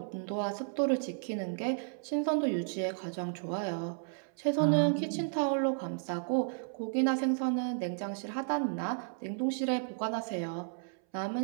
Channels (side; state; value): left; silent; 56 dB below the other